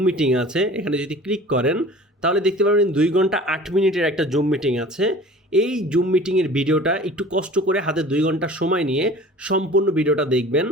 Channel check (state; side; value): normal; both; correlation 0.43